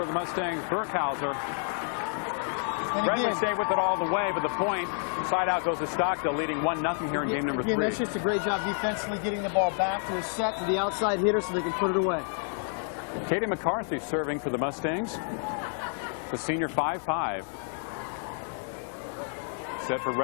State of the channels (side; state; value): right; silent; 57 dB below the other